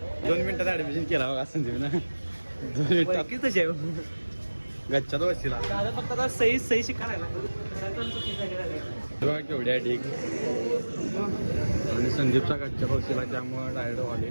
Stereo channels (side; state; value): both; inverted; correlation -1.00